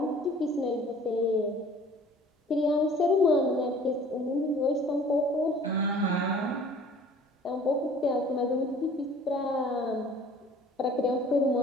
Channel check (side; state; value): both; normal; correlation 0.50